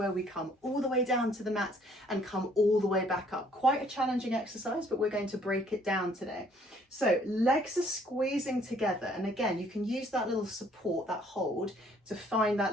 we come all the way down to the mat and come all the way back up. Quite a challenging exercise, but we're going to break it down today. So legs are squeezing together. And again, you can use that little support, that hold, to find that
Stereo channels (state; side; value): normal; both; correlation 0.62